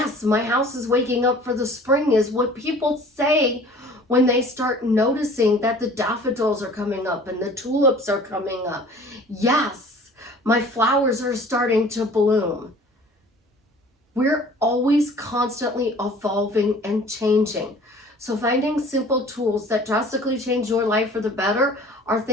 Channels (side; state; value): both; normal; correlation 0.48